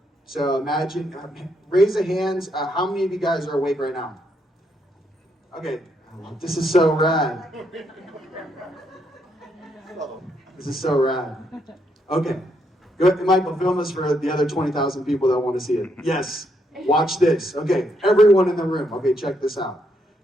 So imagine, raise the hands. How many of you guys are awake right now? Okay, this is so rad. This is so rad. Okay, good. Michael, film this for the other 20,000 people that want to see it. Yes, watch this. Okay, everyone in the room. Okay, check this out.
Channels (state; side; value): normal; both; correlation 0.76